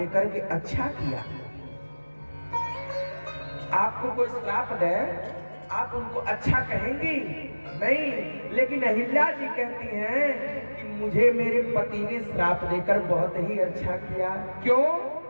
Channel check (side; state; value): both; inverted; correlation -1.00